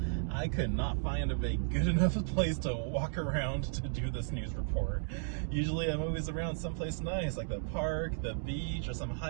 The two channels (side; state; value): left; silent; digital silence